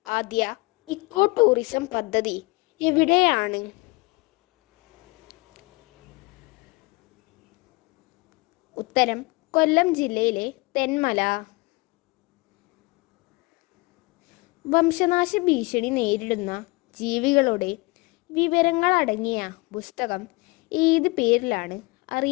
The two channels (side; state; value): right; quieter; 25.3 dB